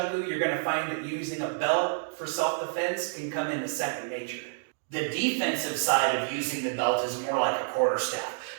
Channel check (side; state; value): left; silent; digital silence